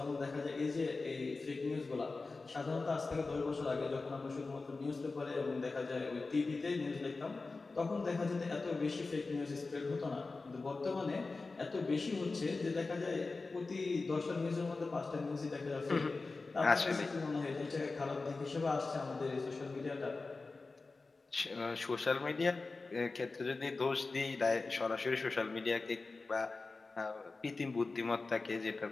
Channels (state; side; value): quieter; right; 3.8 dB